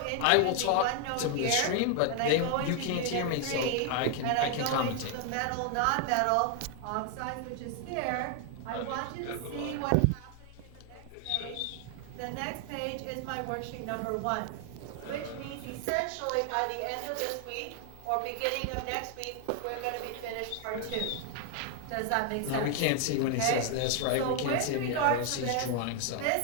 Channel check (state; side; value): different; both; correlation 0.00